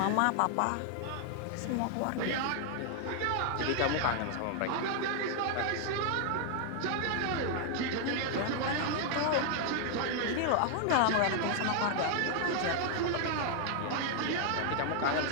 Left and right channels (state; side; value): different; both; correlation 0.00